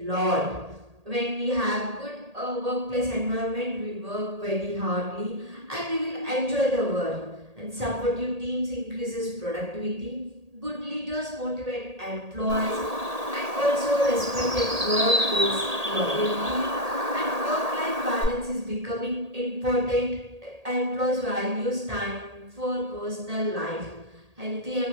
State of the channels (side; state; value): left; late; 1.8 ms